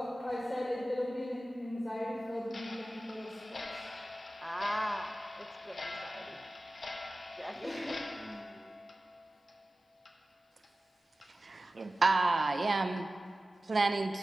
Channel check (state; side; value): normal; both; correlation 0.96